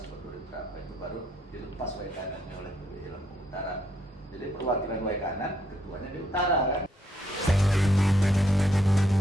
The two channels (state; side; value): normal; both; correlation 0.73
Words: 2000 berapa itu baru dilepas Waikanannya oleh PBI Lampung Utara. Jadi perwakilan Waikanan ketuanya di utara kan.